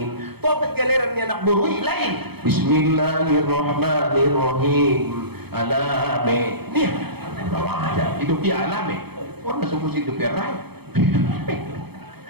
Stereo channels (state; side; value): late; left; 0.97 ms